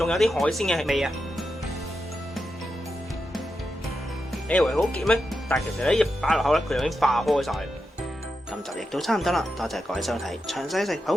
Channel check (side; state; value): both; normal; correlation 0.88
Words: 有啲海鮮嘅味啊！你以為好結咩？但係其實咧一擺落口咧，佢已經化開晒。今集亦都差唔多啦，多謝各位收睇。詳細食譜